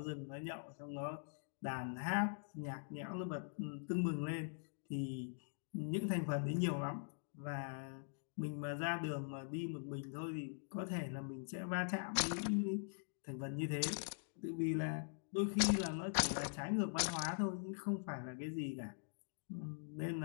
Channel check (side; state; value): right; silent; digital silence